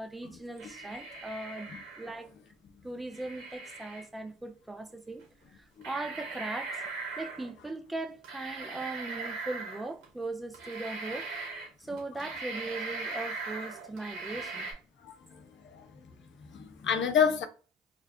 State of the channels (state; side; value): normal; both; correlation 0.47